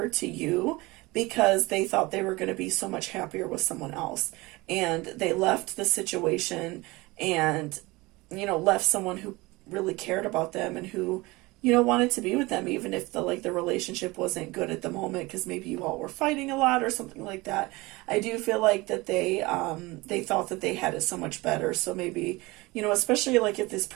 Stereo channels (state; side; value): quieter; left; 22.4 dB